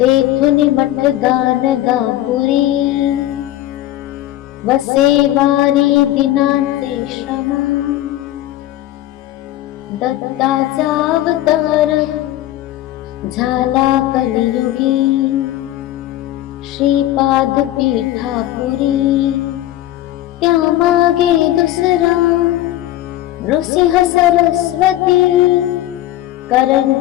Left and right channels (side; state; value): right; quieter; 14.4 dB